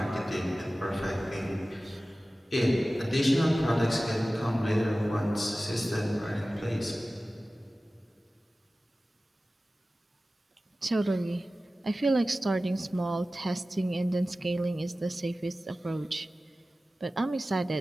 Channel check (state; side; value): normal; both; correlation 0.96